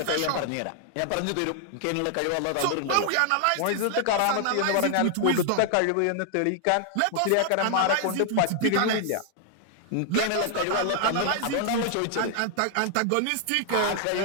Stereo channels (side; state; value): both; different; correlation 0.00